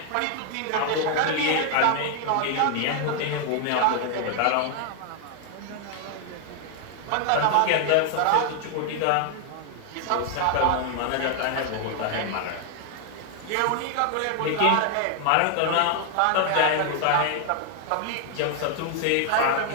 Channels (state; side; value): different; both; correlation 0.00